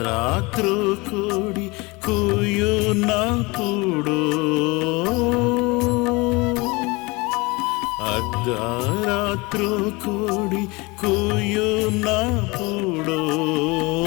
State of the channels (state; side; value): quieter; right; 25.0 dB